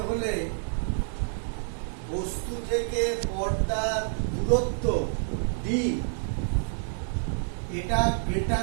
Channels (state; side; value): silent; left; 58 dB below the other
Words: হলে বস্তু থেকে পর্দার দূরত্ব d এটা